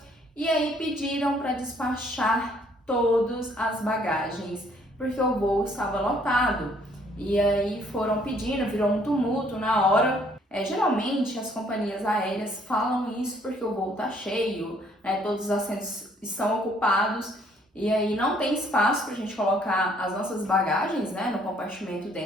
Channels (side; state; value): both; normal; correlation 0.64